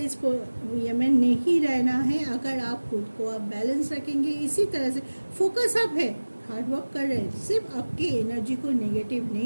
ये में नहीं रहना है। अगर आप खुद को आप बैलेंस रखेंगे, इसी तरह से फोकस अप है, हार्ड वर्क कर रहे हैं, सिर्फ आपकी एनर्जी को नेगेटिव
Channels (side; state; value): both; inverted; correlation -1.00